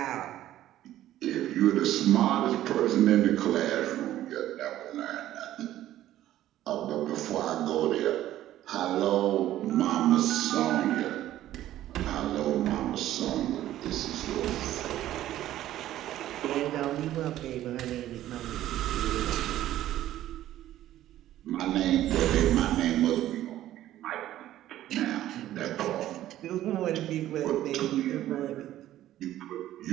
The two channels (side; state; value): left; quieter; 13.4 dB